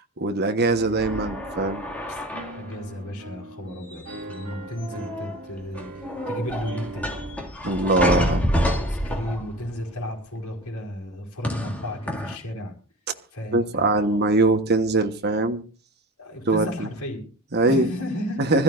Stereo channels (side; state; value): both; normal; correlation 0.33